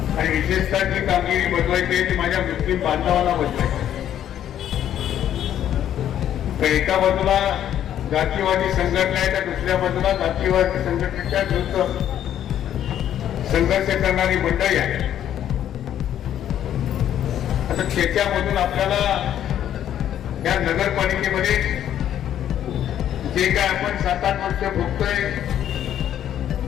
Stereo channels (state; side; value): quieter; right; 10.7 dB